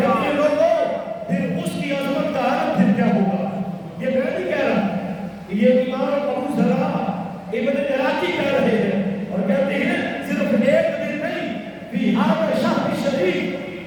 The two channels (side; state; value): both; identical; correlation 1.00